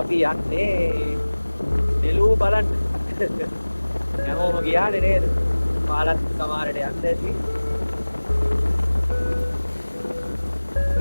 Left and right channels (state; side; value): inverted; both; correlation -1.00